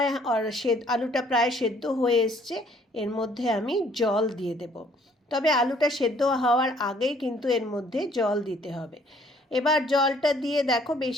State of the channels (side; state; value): both; normal; correlation 0.61